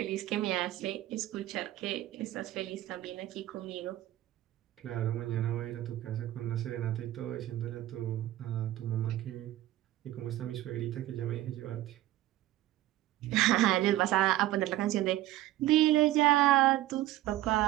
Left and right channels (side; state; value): left; quieter; 15.3 dB